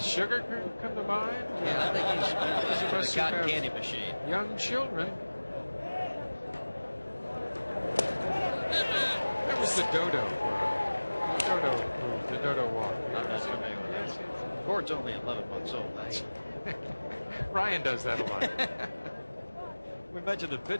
come to mind? Yeah, I think he's been the cotton candy machine. Young children. That was the dodo move, the dodo walk. I'm not familiar with that. Court's only 11 months old. Ryan does that a lot. We mentioned the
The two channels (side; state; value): both; inverted; correlation -1.00